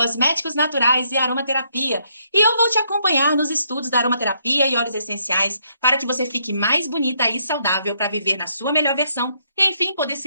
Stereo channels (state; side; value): inverted; both; correlation -0.73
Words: naturais e aromaterapia. E eu vou te acompanhar nos estudos da aromaterapia e óleos essenciais para que você fique mais bonita e saudável para viver na sua melhor versão e, enfim, poder